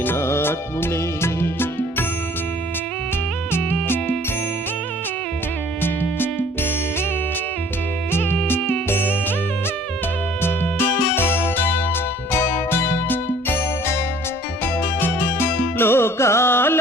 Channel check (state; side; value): normal; both; correlation 0.54